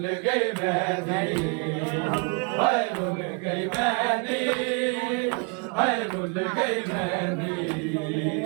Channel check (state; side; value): quieter; left; 34.6 dB